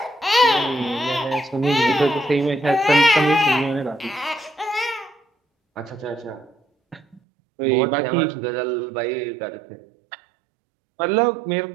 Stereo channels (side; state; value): left; drops out; at 7.2 s